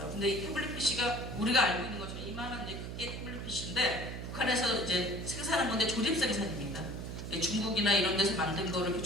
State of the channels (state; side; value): noise; right; hum, 7 dB below the sound